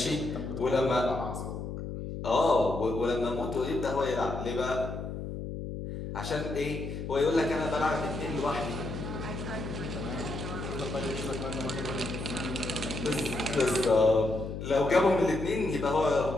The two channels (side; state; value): left; noise; hum, 6 dB below the sound